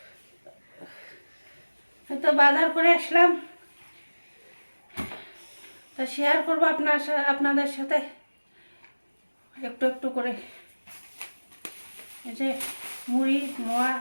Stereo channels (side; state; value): both; inverted; correlation -1.00